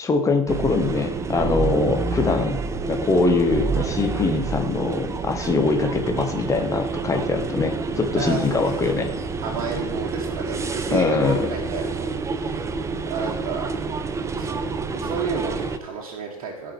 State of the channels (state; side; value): normal; both; correlation 0.56